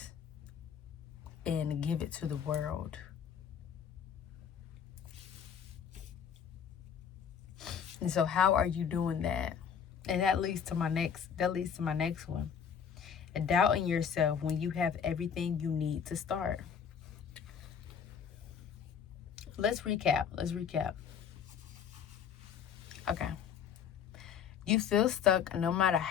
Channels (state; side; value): quieter; right; 7.6 dB